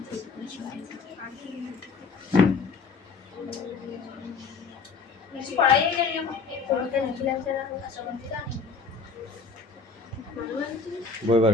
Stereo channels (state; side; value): quieter; right; 4.7 dB